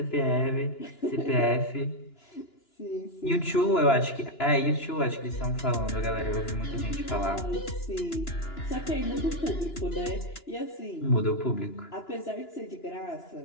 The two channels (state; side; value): late; right; 2.9 ms